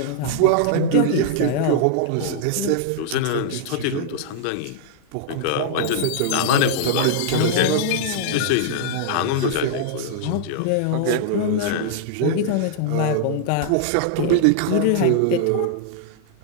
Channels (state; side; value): different; both; correlation -0.01